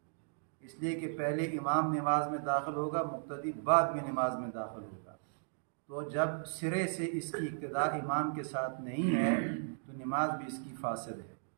اس لیے کہ پہلے امام نماز میں داخل ہوگا، مقتدی بعد میں نماز میں داخل ہوگا۔ تو جب سرے سے اس کی اقتداء امام کے ساتھ نہیں ہے تو نماز بھی اس کی فاسد ہے،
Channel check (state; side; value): silent; left; digital silence